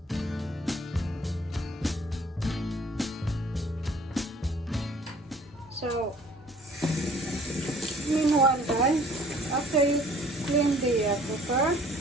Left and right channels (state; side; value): normal; both; correlation 0.54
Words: So meanwhile, guys, after you clean the cooker,